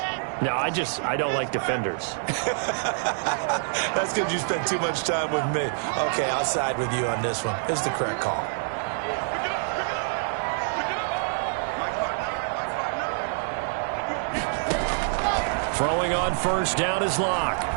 No, I don't like defenders. That's because you spent too much time with me. Okay, I'll side with you on this one. It's the correct call. Throwing on 1st down is Locke.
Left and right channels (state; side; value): silent; left; 61 dB below the other